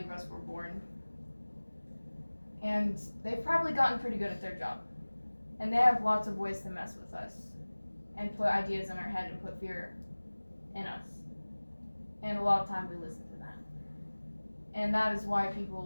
of us were born. And they've probably gotten pretty good at their job. And they have lots of ways to mess with us and put ideas in our head and put fear in us. And a lot of time we listen to that. And that is why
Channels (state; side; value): inverted; both; correlation -1.00